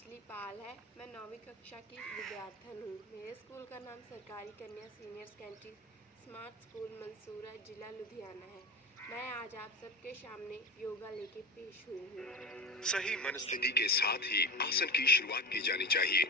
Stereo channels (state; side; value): normal; both; correlation 0.28